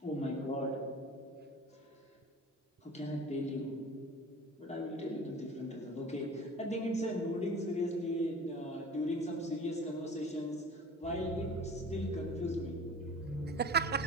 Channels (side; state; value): both; normal; correlation 0.41